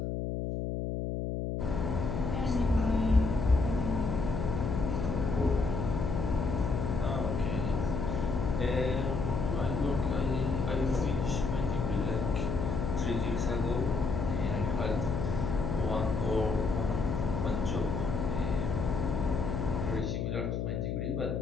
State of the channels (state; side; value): noise; left; hum, 1 dB below the sound